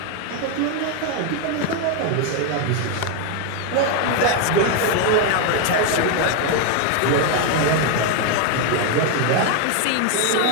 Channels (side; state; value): both; different; correlation 0.01